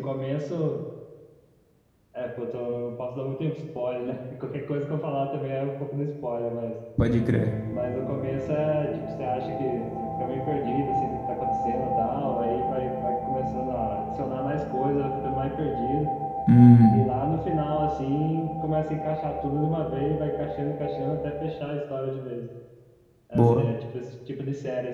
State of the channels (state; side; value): identical; both; correlation 1.00